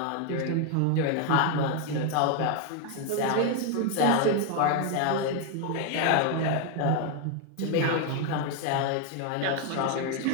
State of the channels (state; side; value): different; both; correlation 0.01